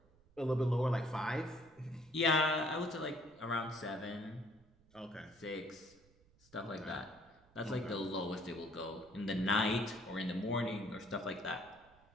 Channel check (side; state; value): right; noise; rumble, 29 dB below the sound